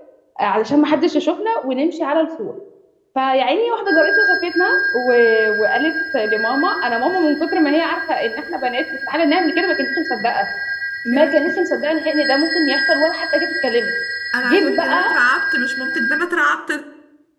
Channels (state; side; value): identical; both; correlation 1.00